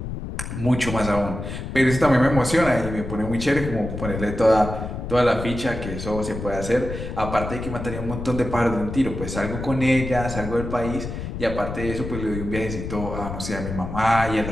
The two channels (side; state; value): left; noise; rumble, 7 dB below the sound